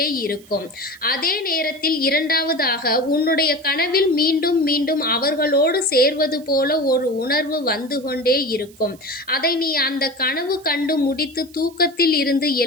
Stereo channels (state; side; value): noise; right; hiss, 25 dB below the sound